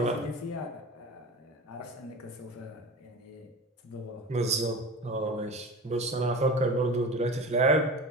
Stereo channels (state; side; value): normal; both; correlation 0.32